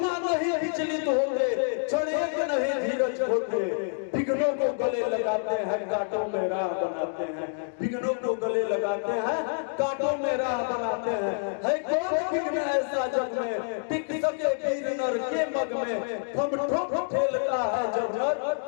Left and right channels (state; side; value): silent; right; digital silence